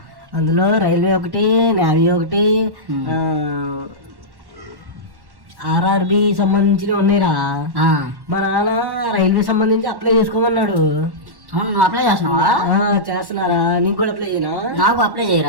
అందులో రైల్వే ఒకటి, నేవీ ఒకటి, ఆర్ఆర్బి సంబంధించినవి ఉన్నాయిరా. మా నాన్న రైల్వే సంబంధించి అప్లై చేసుకోమన్నాడు. అవును, నువ్వు అప్లై చేస్తున్నావా? చేస్తున్నారా? నీకు కూడా అప్లై చేయనా? నాకు అప్లై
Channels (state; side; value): late; left; 1.1 ms